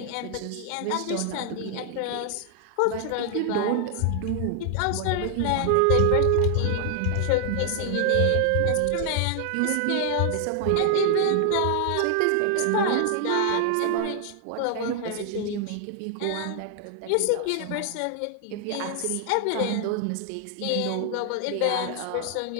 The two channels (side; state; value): both; different; correlation 0.00